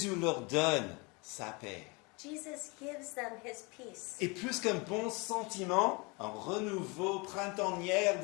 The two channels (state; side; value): quieter; right; 28.6 dB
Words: leur donne sa paix. Jesus gives them his peace. Et plus qu'un bon sentiment, un renouveau printanier